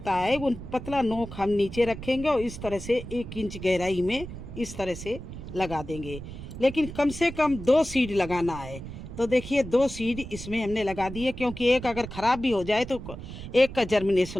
है, वो पतला नोक हम नीचे रखेंगे और इस तरह से 1 इंच गहराई में इस तरह से लगा देंगे। लेकिन कम से कम 2 सीड लगाना है। तो देखिए 2 सीड इसमें हमने लगा दिए, क्योंकि एक अगर ख़राब भी हो जाए तो एक का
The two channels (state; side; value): noise; right; rumble, 11 dB below the sound